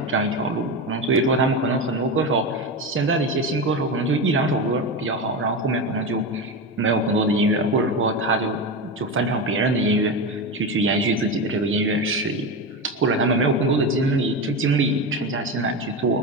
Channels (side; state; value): both; normal; correlation 0.19